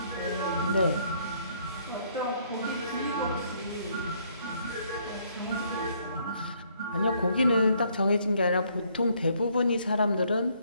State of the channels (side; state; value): both; inverted; correlation -0.67